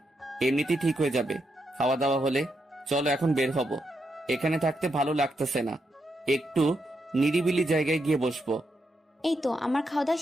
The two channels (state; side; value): normal; both; correlation 0.82